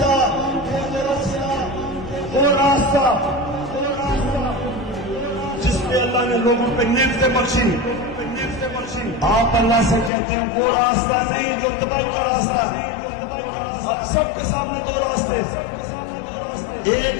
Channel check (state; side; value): drops out; right; at 10.1 s